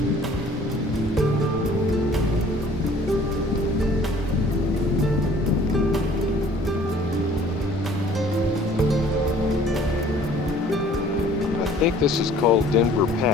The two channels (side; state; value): both; normal; correlation 0.53